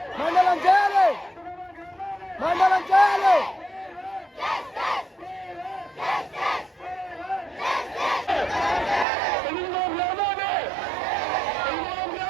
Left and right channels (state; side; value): drops out; left; at 9.1 s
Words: మండలం చేయాలి, మండలం చేయాలి.